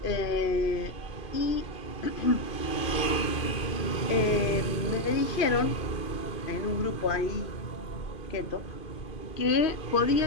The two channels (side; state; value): right; late; 2.5 ms